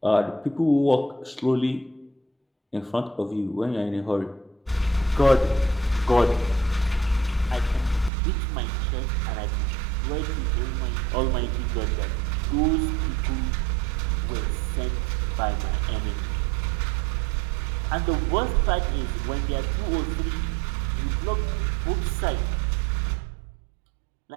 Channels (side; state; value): left; drops out; at 8.1 s